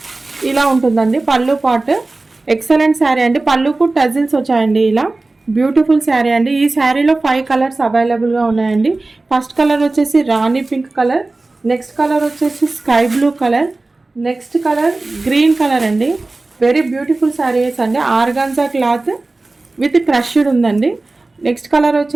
ఇలా ఉంటుందండి. పళ్ళు పాట్ ఎక్సలెంట్ శారీ అండి. పళ్ళుకు టజిల్స్ వచ్చాయండి. ఇలా బ్యూటిఫుల్ శారీ అండి. ఈ శారీలో 5 కలర్స్ అవైలబుల్గా ఉన్నాయండి. ఫస్ట్ కలర్ వచ్చేసి రాణి పింక్ కలర్, నెక్స్ట్ కలర్ వచ్చేసి sky blue colour, next colour green colour అండి. వెరీ బ్యూటిఫుల్ శారీస్ అండి. ఆర్గాన్జా క్లాత్ విత్ క్రష్డ్ ఉందండి. నెక్స్ట్ కలర్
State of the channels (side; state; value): left; quieter; 3.2 dB